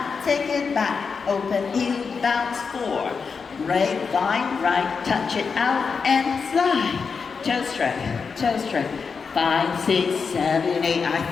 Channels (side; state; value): right; quieter; 5.4 dB